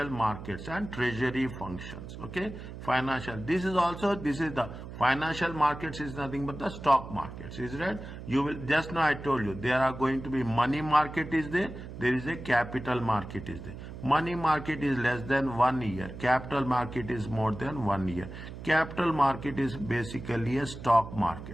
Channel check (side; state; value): right; noise; hum, 11 dB below the sound